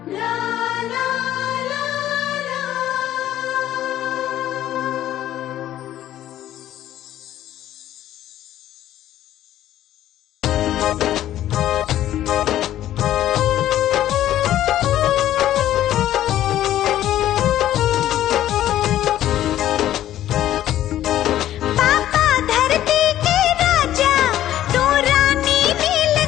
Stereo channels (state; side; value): quieter; right; 12.7 dB